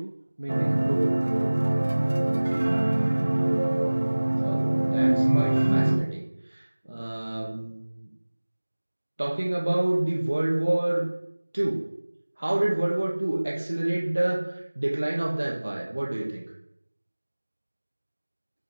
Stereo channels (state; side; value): inverted; both; correlation -1.00